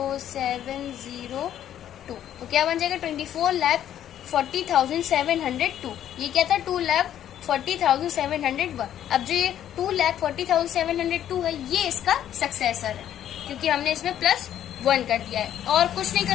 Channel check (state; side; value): quieter; right; 10.9 dB